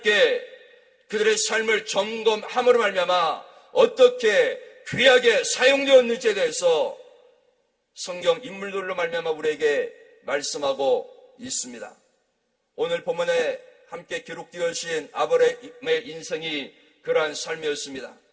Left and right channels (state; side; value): identical; both; correlation 1.00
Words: 그들의 삶을 점검함으로 말미암아 어떻게 귀하게 사용되었는지에 대해서 성경 인물들로 말미암아 우리에게 말씀하고 있습니다. 오늘 본문에 함께 기록되어진 아브라함의 인생이 그러한 삶이었습니다.